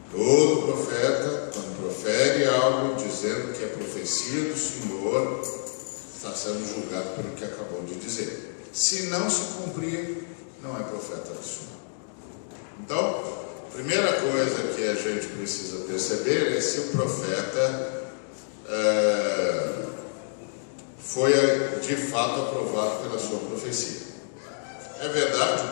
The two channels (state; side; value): silent; right; digital silence